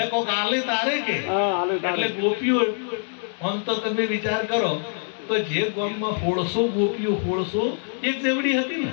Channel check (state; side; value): silent; right; 62 dB below the other